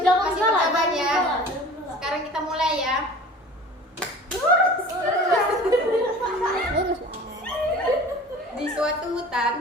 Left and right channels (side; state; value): both; normal; correlation 0.42